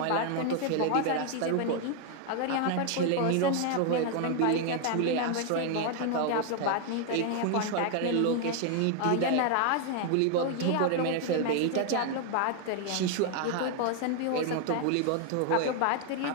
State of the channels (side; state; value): both; different; correlation 0.00